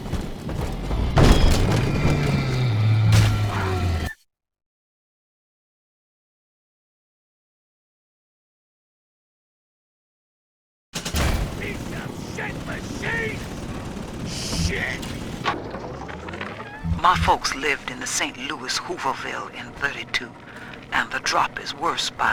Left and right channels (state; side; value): identical; both; correlation 1.00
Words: My folks lived in the St. Louis Hooverville in 32, and the drop is worse by